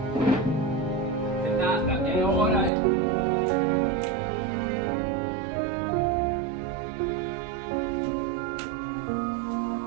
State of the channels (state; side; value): drops out; left; at 2.7 s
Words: Renata, é hora!